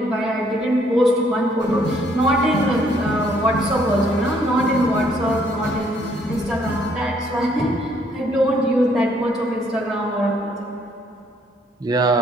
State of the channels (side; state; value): both; normal; correlation 0.67